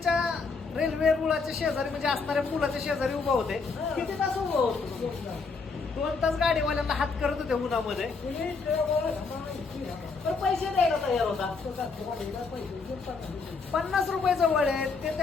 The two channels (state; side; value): quieter; right; 4.5 dB